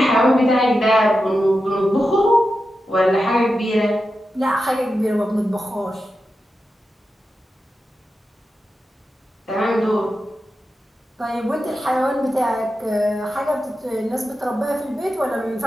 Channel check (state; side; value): normal; both; correlation 0.90